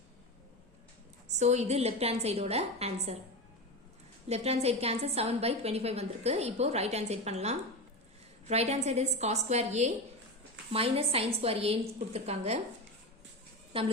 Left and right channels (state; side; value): normal; both; correlation 0.22